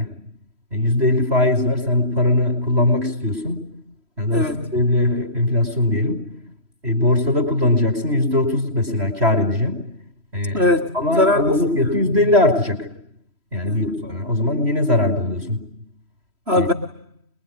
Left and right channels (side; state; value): left; late; 3.1 ms